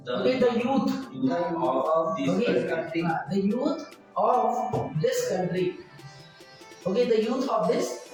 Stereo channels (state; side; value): identical; both; correlation 1.00